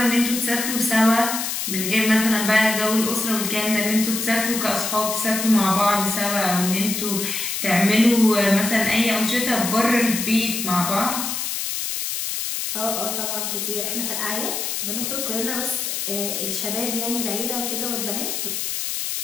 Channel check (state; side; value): noise; left; hiss, 3 dB below the sound